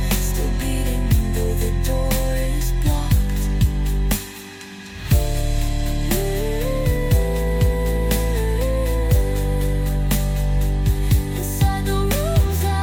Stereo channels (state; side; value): identical; both; correlation 1.00